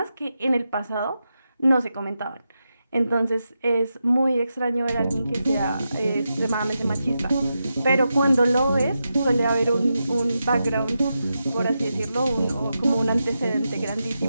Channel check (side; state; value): both; inverted; correlation -0.88